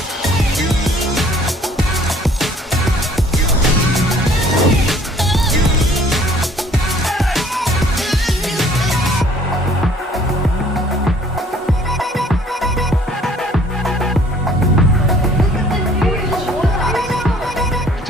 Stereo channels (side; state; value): both; normal; correlation 0.56